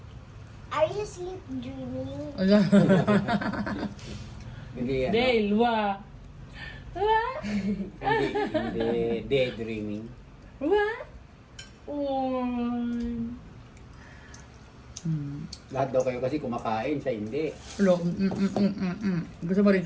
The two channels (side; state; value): both; identical; correlation 1.00